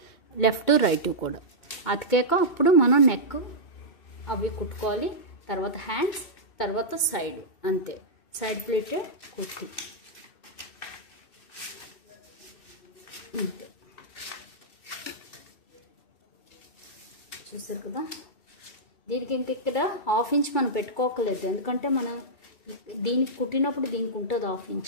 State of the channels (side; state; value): right; late; 2.6 ms